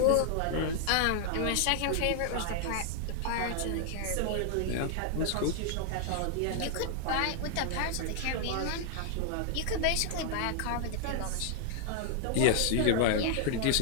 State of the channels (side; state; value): both; different; correlation 0.00